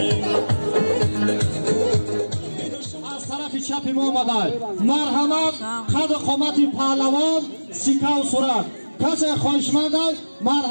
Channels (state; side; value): inverted; both; correlation -1.00